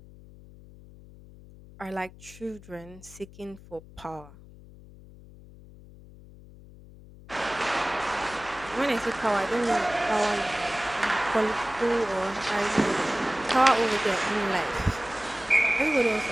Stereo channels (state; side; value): noise; left; hum, 20 dB below the sound